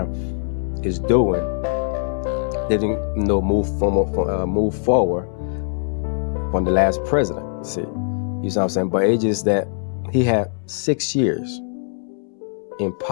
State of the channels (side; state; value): right; silent; 64 dB below the other